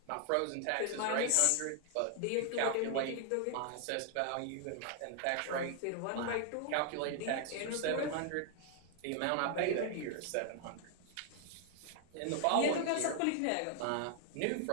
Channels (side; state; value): both; different; correlation 0.00